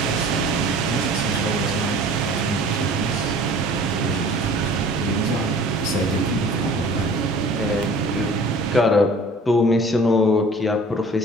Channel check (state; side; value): normal; both; correlation 0.47